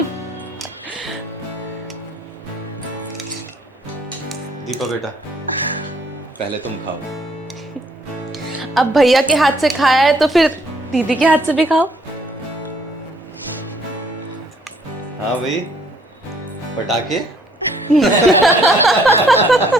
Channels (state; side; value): normal; both; correlation 0.64